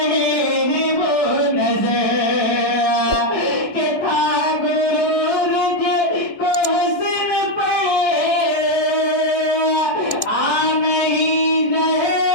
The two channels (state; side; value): late; right; 1.1 ms